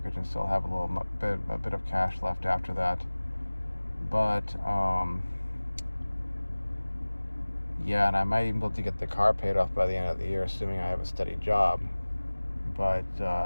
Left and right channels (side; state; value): both; inverted; correlation -1.00